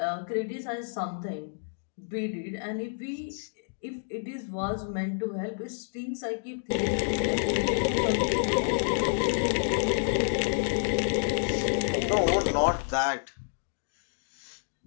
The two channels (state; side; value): silent; right; digital silence